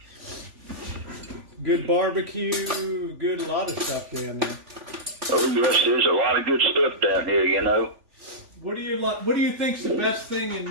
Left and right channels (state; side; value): late; left; 3.5 ms